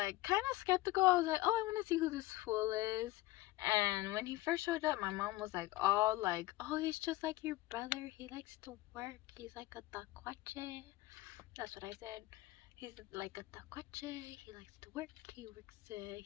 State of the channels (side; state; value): right; quieter; 18.1 dB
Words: kind of skeptical. I was like, oh, I want to see who this fool is. And when he first showed up, my mom was like, all like, oh, he's just like your brother. He likes to work. He's like a tacuache. That's what I said. He's like a tacuache. He likes to work.